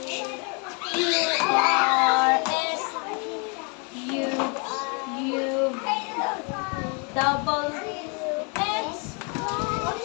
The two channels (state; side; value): quieter; right; 34.2 dB